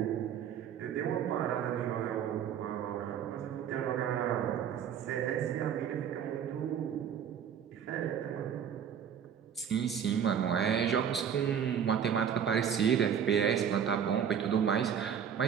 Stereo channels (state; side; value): quieter; left; 8.3 dB